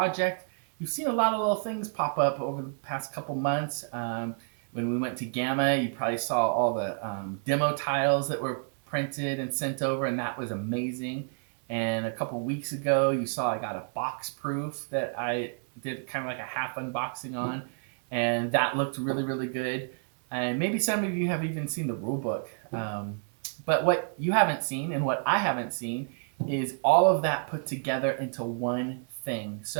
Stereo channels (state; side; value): silent; left; digital silence